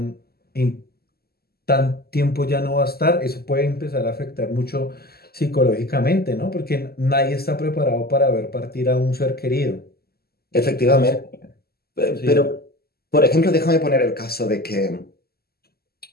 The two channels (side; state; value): right; late; 0.45 ms